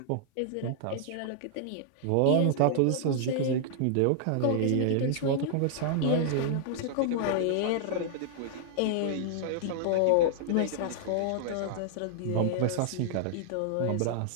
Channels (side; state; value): both; different; correlation -0.01